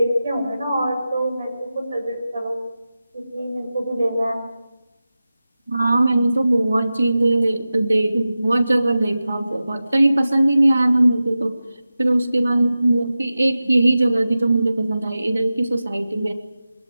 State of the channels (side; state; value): both; inverted; correlation -0.94